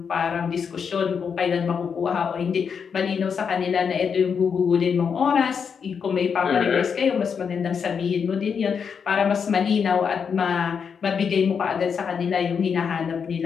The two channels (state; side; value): quieter; right; 6.5 dB